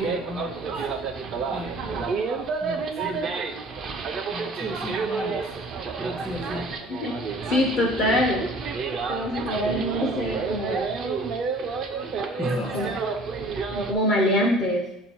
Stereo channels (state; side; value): normal; both; correlation 0.49